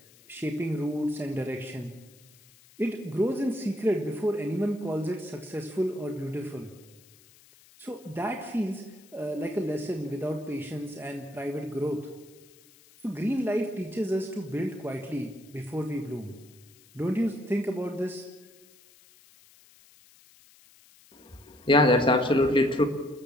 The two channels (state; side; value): noise; left; hiss, 26 dB below the sound